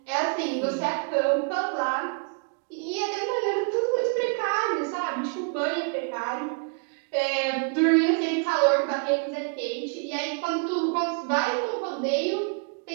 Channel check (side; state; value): left; quieter; 38.2 dB